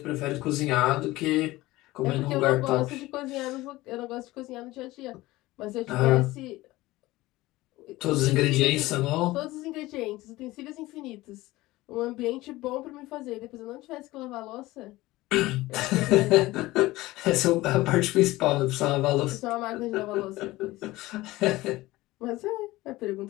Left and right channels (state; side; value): quieter; right; 18.7 dB